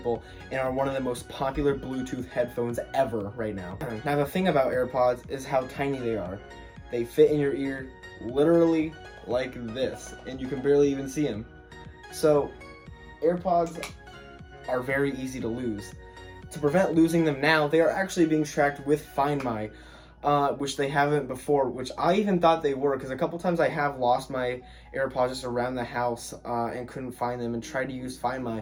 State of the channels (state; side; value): identical; both; correlation 1.00